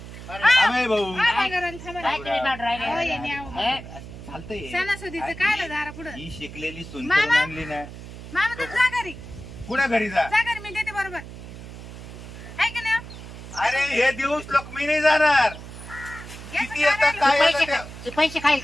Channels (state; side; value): noise; right; hum, 13 dB below the sound